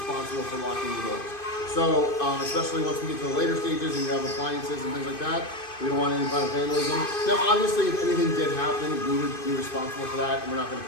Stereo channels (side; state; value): right; late; 2.5 ms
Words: for locking the doors. So, especially once we get to the later stages and you have appliances and things like that, we don't want any kind of vandalism. Now, obviously, if anything did happen, we would be responsible for that, and we're not going to